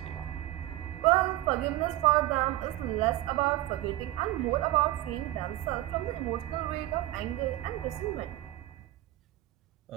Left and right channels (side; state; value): left; quieter; 16.1 dB